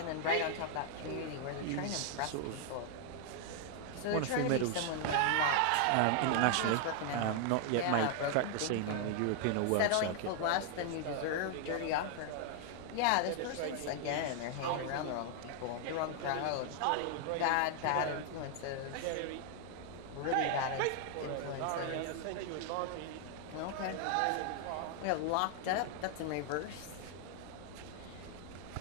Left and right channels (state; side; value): different; both; correlation 0.00